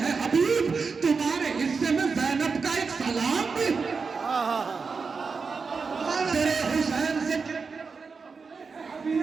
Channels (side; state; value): left; quieter; 4.9 dB